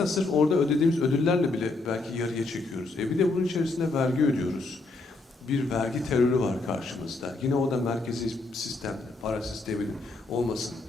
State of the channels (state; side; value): quieter; right; 3.3 dB